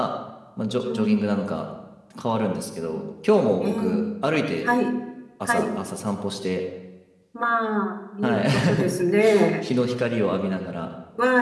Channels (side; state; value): both; identical; correlation 1.00